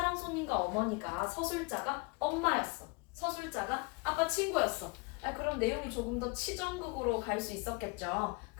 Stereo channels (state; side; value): quieter; right; 28.9 dB